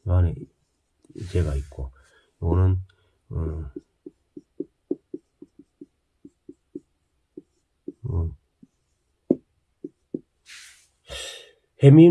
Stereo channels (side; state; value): both; identical; correlation 1.00